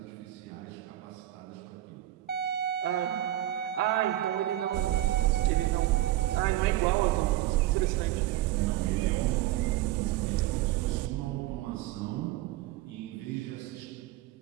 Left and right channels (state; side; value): quieter; left; 14.7 dB